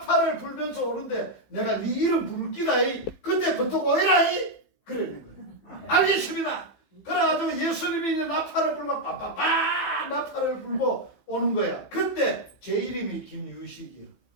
불면서 오는데 내가 네 이름 부를 끼다. 그때부터 오해라. 그러는 거예요. 알겠습니다. 그래가지고 예수님이 이제 나팔을 불고 빠빠빠 나팔을 불고 오는 거야. 그때 제 이름이 김유식이요.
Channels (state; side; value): late; right; 15 ms